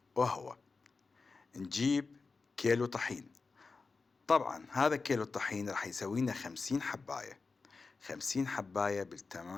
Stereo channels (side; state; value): right; quieter; 4.3 dB